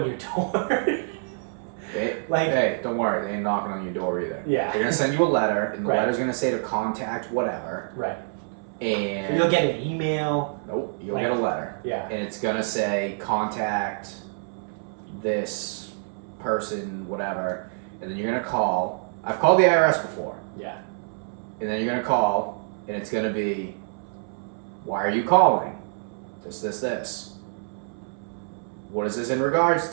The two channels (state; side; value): silent; left; 61 dB below the other